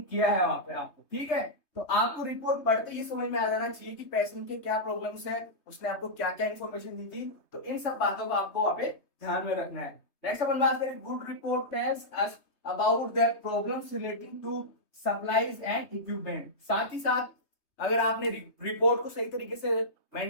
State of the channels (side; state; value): right; late; 3.2 ms